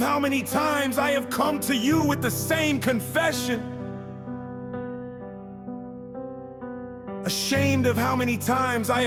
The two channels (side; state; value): both; identical; correlation 1.00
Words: many times I have come to you with the same confession. Ashamed of how many times I